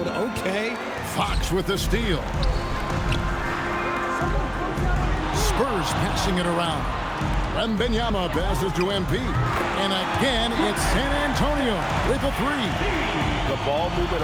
Okay. Fox with the steal. Spurs passing it around. Wembanyama passes to MP. And again, it's San Antonio with a 3. The ball movement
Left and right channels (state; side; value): identical; both; correlation 1.00